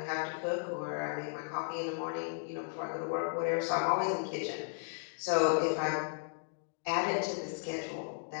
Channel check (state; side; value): silent; right; digital silence